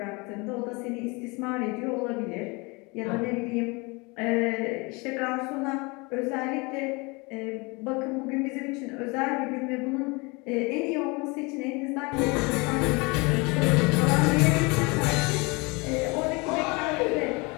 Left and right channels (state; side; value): quieter; right; 27.5 dB